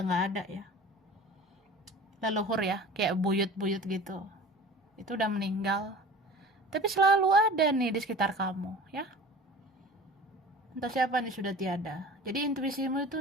ada ya. Leluhur ya, kayak buyut-buyut gitu. Itu udah meninggal. Tapi selalu ada nih di sekitar kamu, ya. Entah siapa nih sudah tiada. Jadi intuisimu itu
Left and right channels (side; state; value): both; normal; correlation 0.40